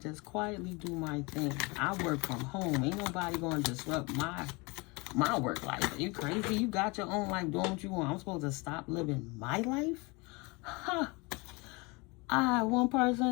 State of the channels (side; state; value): right; quieter; 27.0 dB